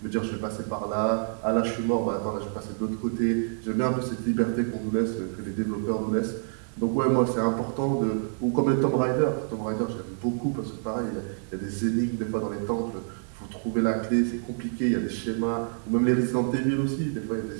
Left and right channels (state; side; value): silent; left; 60 dB below the other